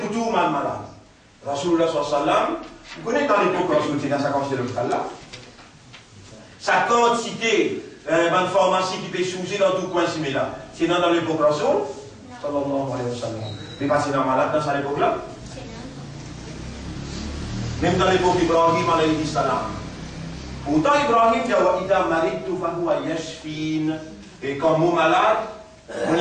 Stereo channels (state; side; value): identical; both; correlation 1.00